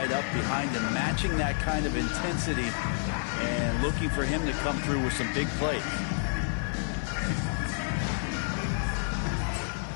up behind him, matching that kind of intensity and looking for him to come through with some big plays.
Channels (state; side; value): silent; right; digital silence